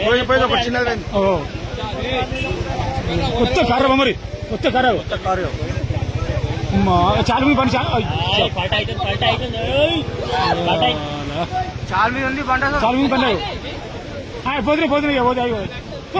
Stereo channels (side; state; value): both; identical; correlation 1.00